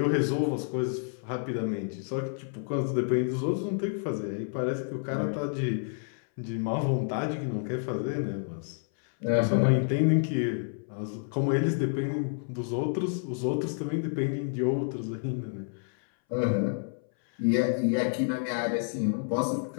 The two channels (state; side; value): silent; right; 58 dB below the other